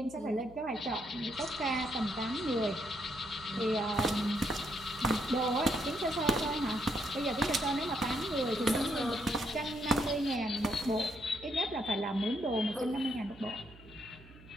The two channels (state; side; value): noise; right; hum, 21 dB below the sound